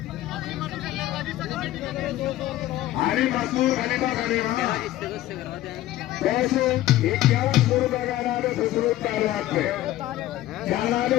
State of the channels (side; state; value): right; quieter; 14.8 dB